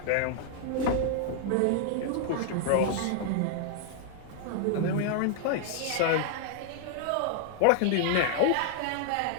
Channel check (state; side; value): different; both; correlation 0.00